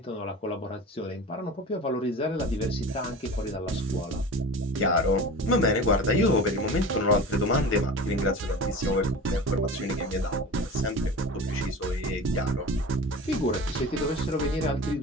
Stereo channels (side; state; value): both; normal; correlation 0.34